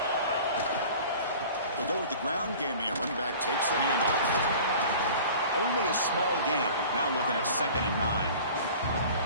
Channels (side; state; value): both; inverted; correlation -0.43